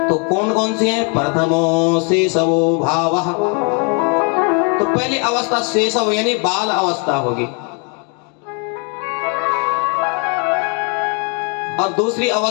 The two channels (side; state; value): right; quieter; 36.8 dB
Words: तो कौन कौन सी हैं? प्रथमो शेषवो भावः। तो पहली अवस्था शेषव यानी बाल अवस्था होगी, और दूसरी